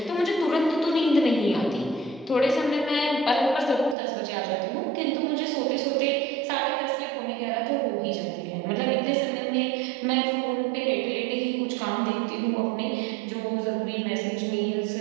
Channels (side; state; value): left; drops out; at 4.0 s